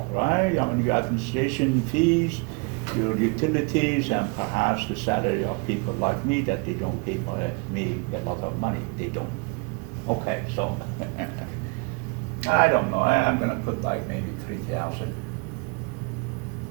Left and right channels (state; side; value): quieter; left; 31.2 dB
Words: right? I mean, your administration fees, your utilities, and perhaps the salary of people like me that they don't pay me a lot of money. They don't. Okay, so I don't know. I'm going to put like maybe 3,000.